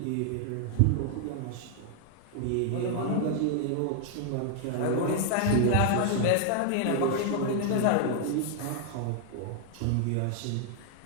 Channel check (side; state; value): both; different; correlation 0.00